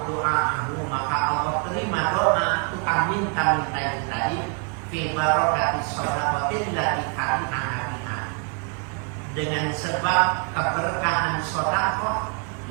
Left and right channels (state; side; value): quieter; left; 38.5 dB